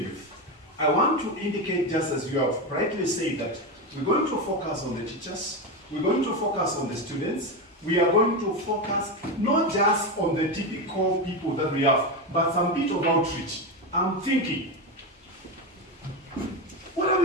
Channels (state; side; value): normal; both; correlation 0.15